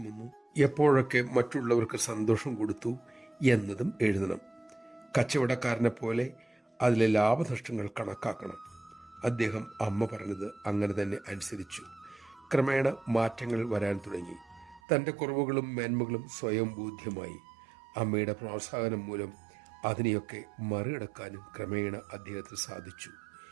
വന്നു, എപ്പോഴൊക്കെ മറ്റുള്ളവർക്ക് സന്തോഷം കൊടുത്തു എന്നതും എഴുതണം. കച്ചവടക്കാരനെ പോലെ അതിലെ ലാഭനഷ്ടങ്ങൾ കണക്കാക്കണം. അദ്ദേഹം അമ്മ പറഞ്ഞത് അങ്ങനെ തന്നെ അനുസരിച്ചു. ക്രമേണ മാറ്റങ്ങൾ വരാൻ തുടങ്ങി. തൻ്റെ കുറവുകളും മേന്മകളും സ്വയം ബോധ്യമായി. അമ്മയുടെ പ്രോത്സാഹനം മൂലം അതിനെയൊക്കെ മറികടക്കാനും ക്രമേണ അദ്ദേഹത്തിന് സാധിച്ചു.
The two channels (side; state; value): left; drops out; at 14.8 s